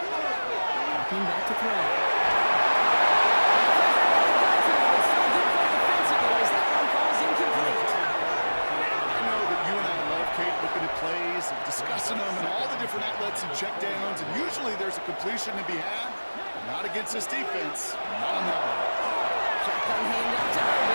Walking back to throw. Plays, discussing them and all the different outlets and checkdowns, and usually there's a completion to be had. Not against this defense. Not on that one. Shotgun handoff to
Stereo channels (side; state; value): both; inverted; correlation -1.00